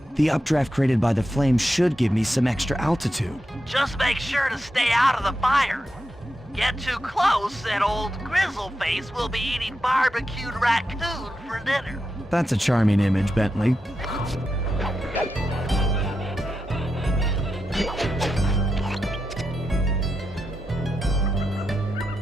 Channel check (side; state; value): both; normal; correlation 0.87